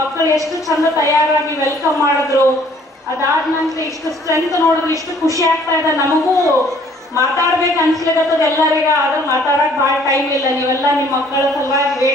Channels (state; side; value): normal; both; correlation 0.59